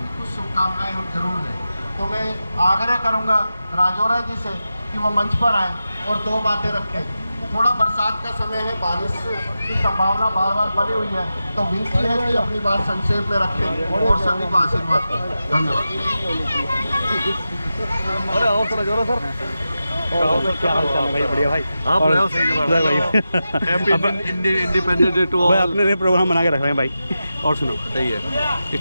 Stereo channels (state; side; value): inverted; both; correlation -0.91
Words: कुछ शुभकामनाएं हम जरूर दें। तो मैं आग्रह करूँगा राजौरा जी से कि वो मंच पर आएँ और दो बातें रखें। थोड़ा बरसात का समय है, बारिश की संभावना बार बार बनी हुई है, तो विनती है कि अपनी बात संक्षेप में रखें और सभी को आशीर्वाद दें। धन्यवाद। अरे आओ सर जोरा सर। क्या हाल चाल है भाई? बढ़िया भाई। आप और रहो सही जगह भाई। Happy independence day to all. अपने लिए प्रोग्राम बना के रख रहे हैं भाई। और सुनो सही है।